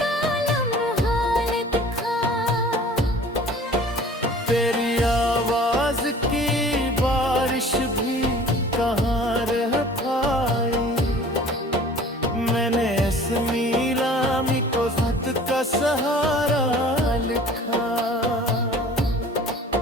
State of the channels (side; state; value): both; normal; correlation 0.47